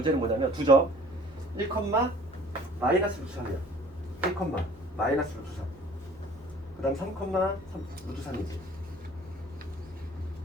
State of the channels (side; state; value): both; normal; correlation 0.51